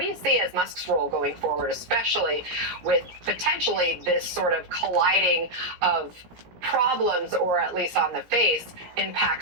you see as Musk's role going forward, especially with potentially this sort of colliding of problems, or at least on the face,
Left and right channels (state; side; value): late; left; 17 ms